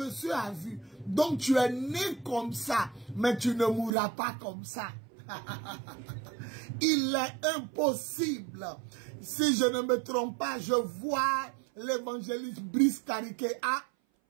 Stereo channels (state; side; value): drops out; left; at 3.9 s